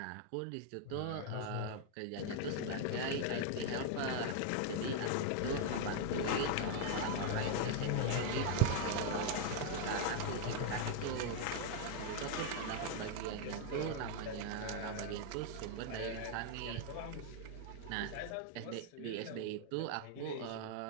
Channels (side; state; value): both; different; correlation 0.00